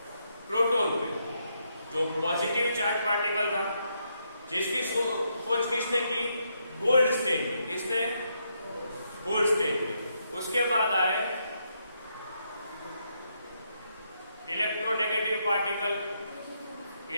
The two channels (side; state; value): both; inverted; correlation -0.78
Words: प्रोटॉन पे जो पॉजिटिव चार्ज पार्टिकल था जिसकी खोज किसने की? गोल्डस्टीन ने. किसने? गोल्डस्टीन ने. उसके बाद आए इलेक्ट्रोनेगेटिव पार्टिकल